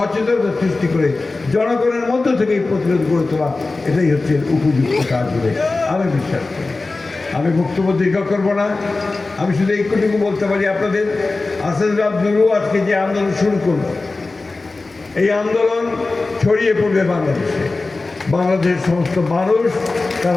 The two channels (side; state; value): right; quieter; 3.5 dB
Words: সৃষ্টি করে জনগণের মধ্য থেকে এই প্রতিরোধ গড়ে তোলা, এটাই হচ্ছে উপযুক্ত কাজ বলে আমি বিশ্বাস করি। আমি বক্তব্য দীর্ঘ করব না। আমি শুধু এইটুকু বলতে পারি আপনাদের, আসাদুর আব্দুলও আজকে যে আন্দোলন শুরু করলো, এই আন্দোলন ছড়িয়ে পড়বে বাংলাদেশে। বাংলাদেশের সমস্ত মানুষ